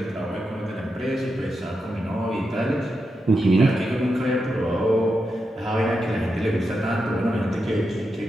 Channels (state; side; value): normal; both; correlation 0.87